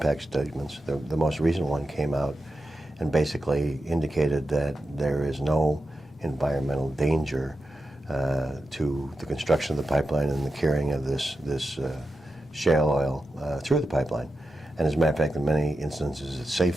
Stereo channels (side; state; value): both; normal; correlation 0.90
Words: statements. The most recent one came out and basically indicated that there is no environmental danger to the construction of the pipeline and the carrying of this shale oil through the pipeline. And as a matter of fact, in many instances, it's